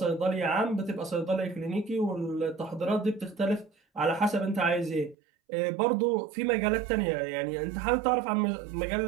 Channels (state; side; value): drops out; left; at 5.2 s